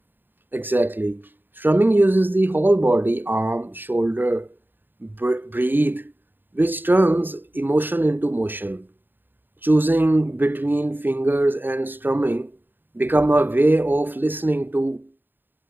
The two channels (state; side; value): late; left; 0.094 ms